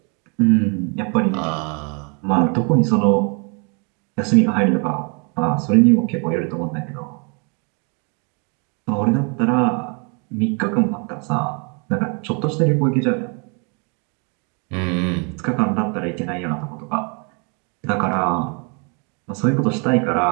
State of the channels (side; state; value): left; quieter; 35.3 dB